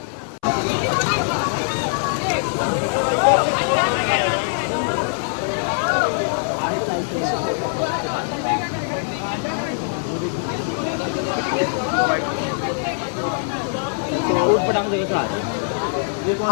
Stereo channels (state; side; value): silent; right; 64 dB below the other